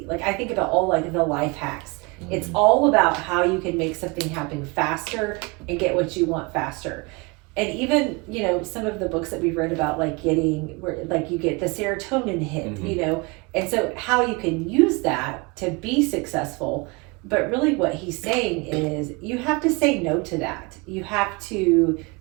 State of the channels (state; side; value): quieter; left; 28.0 dB